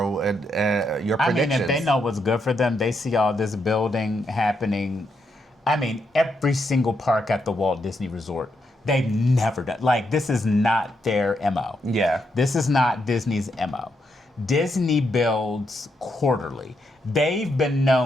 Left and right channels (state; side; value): normal; both; correlation 0.80